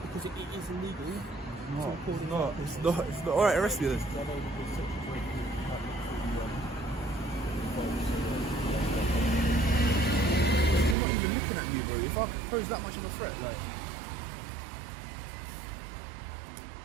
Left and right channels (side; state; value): left; drops out; at 11.0 s